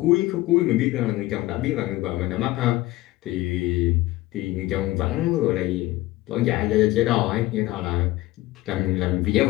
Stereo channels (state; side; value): quieter; right; 17.8 dB